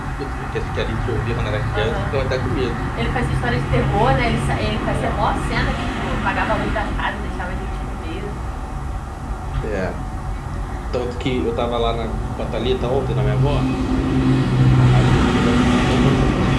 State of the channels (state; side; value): identical; both; correlation 1.00